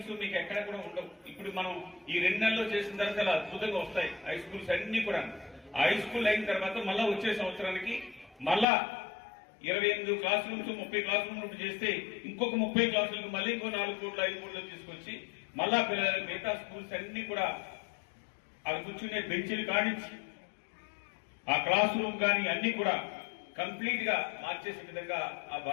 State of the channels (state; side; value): drops out; right; at 8.7 s